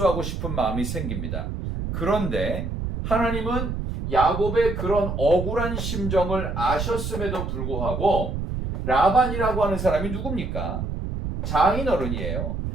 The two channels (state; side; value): noise; right; rumble, 4 dB below the sound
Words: 싶은 마음이 생깁니다. 그런데 하나님은 야곱의 그런 억울한 심정을 아셨음에도 불구하고 라반이라고 하는 사람이 누굽니까? 장인어른이에요.